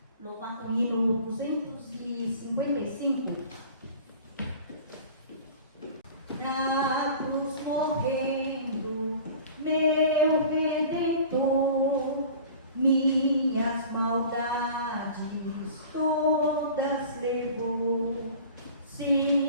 Louvar com o hino 255. Na cruz correndo, meu Redentor, minhas maldades todas levou.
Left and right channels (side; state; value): both; inverted; correlation -0.42